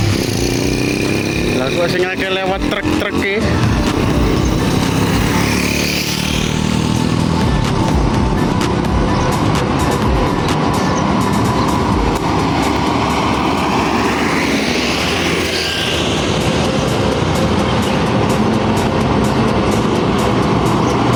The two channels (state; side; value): identical; both; correlation 1.00